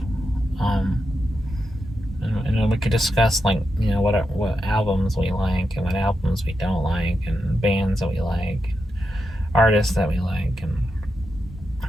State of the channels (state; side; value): normal; both; correlation 0.87